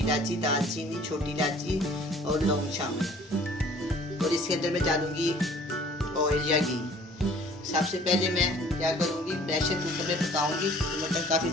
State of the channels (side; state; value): both; normal; correlation 0.52